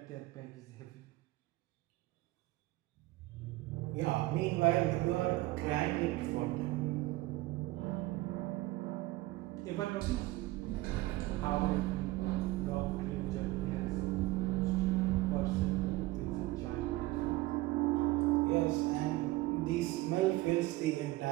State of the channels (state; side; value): quieter; left; 19.1 dB